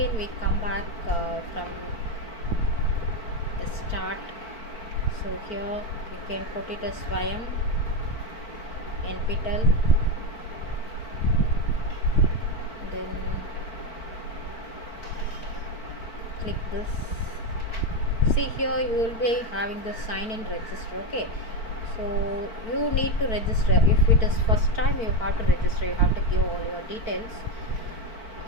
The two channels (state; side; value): late; right; 4.5 ms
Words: we come back from the start. So here you can put it as Swayam NPTEL, then click this. See, here you will be having the sign in register. Okay, so you need to register. If it is first time, you have to register, you have to give all your details.